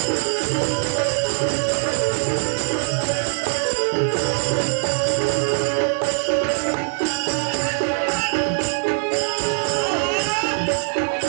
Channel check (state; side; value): silent; left; digital silence